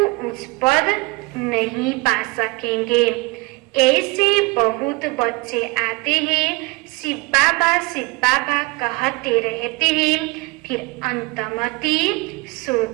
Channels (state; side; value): quieter; left; 24.9 dB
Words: उच्च पद नहीं पा सकेंगे। ऐसे बहुत बच्चे आते हैं, शिव बाबा कहते रहते हैं, फिर अंतमति